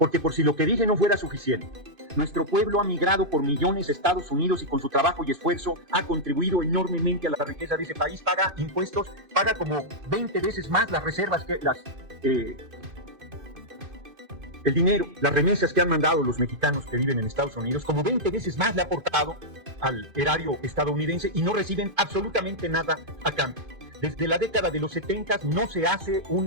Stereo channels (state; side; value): late; left; 2.5 ms